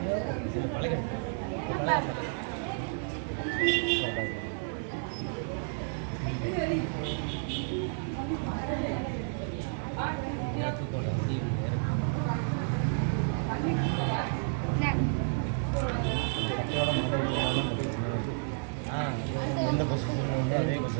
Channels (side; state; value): left; silent; digital silence